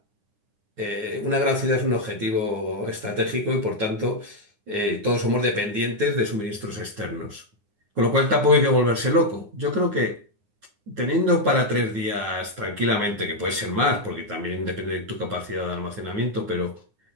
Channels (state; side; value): late; left; 9.8 ms